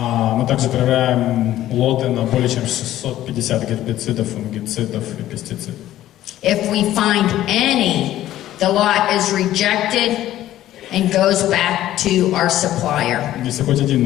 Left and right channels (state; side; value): quieter; right; 13.6 dB